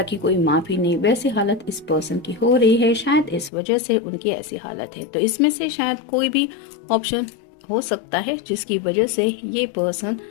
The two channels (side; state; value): right; drops out; at 3.5 s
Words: की कोई माफ़ी नहीं, वैसी हालत इस पर्सन की हो रही है। शायद इस वजह से उनकी ऐसी हालत है। तो इसमें से शायद कोई भी ऑप्शन हो सकता है जिसकी वजह से ये पर्सन